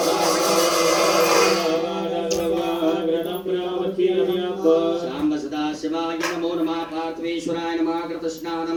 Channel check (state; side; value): identical; both; correlation 1.00